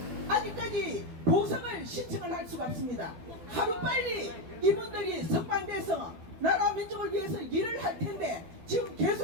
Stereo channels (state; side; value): late; left; 12 ms